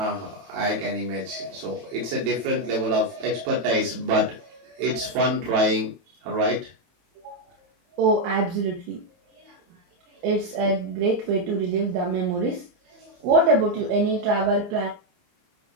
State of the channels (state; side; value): late; left; 25 ms